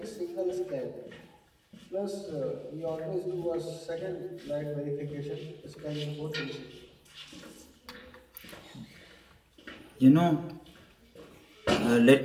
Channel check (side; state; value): both; identical; correlation 1.00